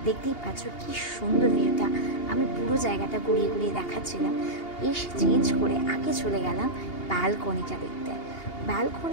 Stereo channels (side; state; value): right; late; 2.8 ms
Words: দেখতেই পাচ্ছ কি সুন্দর ভিউটা। আমি পুরো জায়গাটা ঘুরিয়ে ঘুরিয়ে দেখাচ্ছিলাম। এসে চেঞ্জ করে আগে চলে গেলাম ব্যালকনিটা দেখতে।